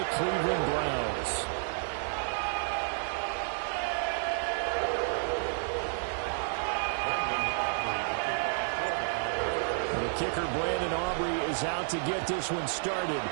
Cleveland Browns. The kicker, Brandon Aubrey, is out to get this one started.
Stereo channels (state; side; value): silent; left; digital silence